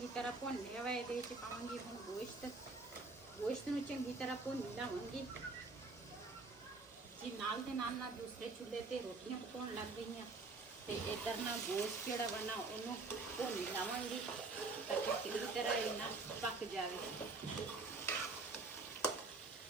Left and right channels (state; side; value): quieter; left; 3.7 dB